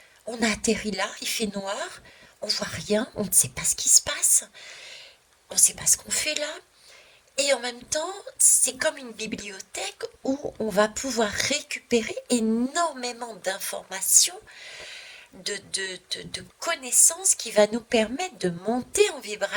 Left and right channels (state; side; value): identical; both; correlation 1.00